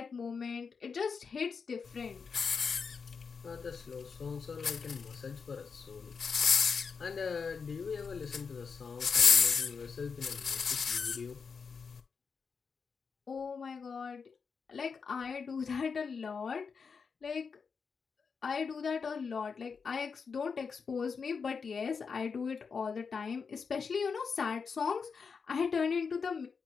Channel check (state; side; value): quieter; right; 5.6 dB